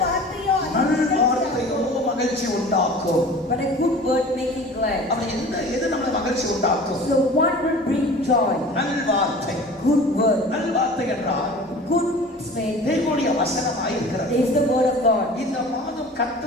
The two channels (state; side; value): normal; both; correlation 0.42